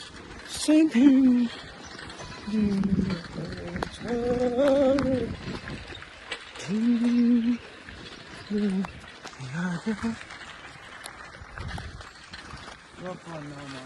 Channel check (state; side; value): identical; both; correlation 1.00